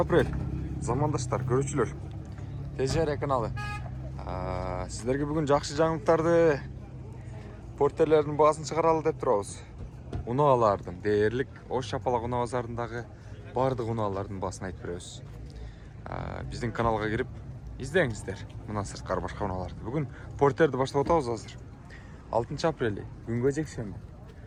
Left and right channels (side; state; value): both; identical; correlation 1.00